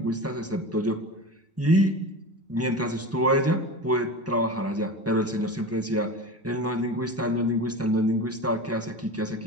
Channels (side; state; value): both; normal; correlation 0.29